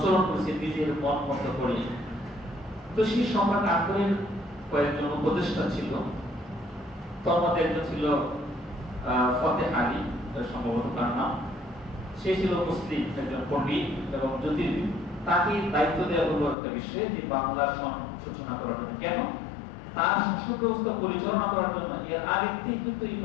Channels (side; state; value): right; drops out; at 16.6 s